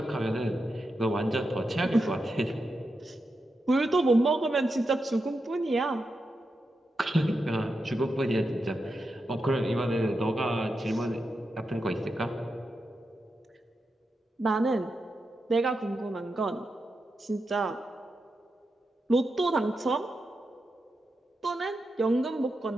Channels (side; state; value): both; normal; correlation 0.88